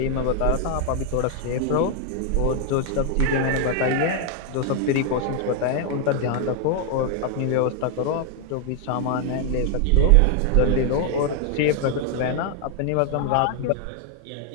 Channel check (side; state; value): both; different; correlation 0.00